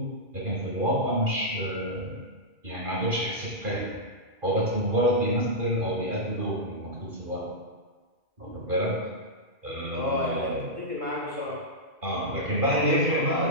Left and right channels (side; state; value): left; late; 2.4 ms